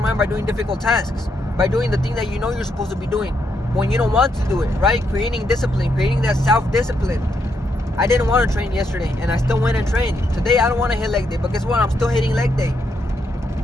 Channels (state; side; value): normal; both; correlation 0.78